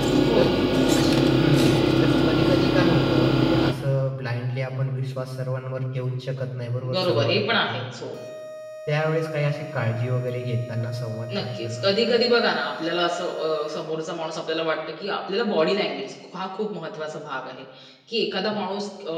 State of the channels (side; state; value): both; identical; correlation 1.00